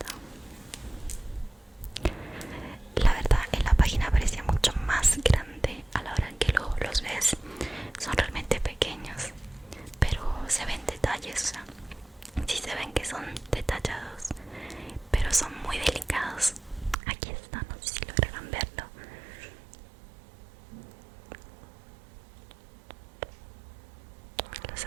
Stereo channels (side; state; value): left; drops out; at 16.9 s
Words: La verdad, en la página parecía mucho más grande. A la hora en que los ves, son realmente pequeños, pero se ven detalles, o sea, sí se ven que son detallados, pero son muy delicados. Aquí está, no sé si lograrán verlo. Los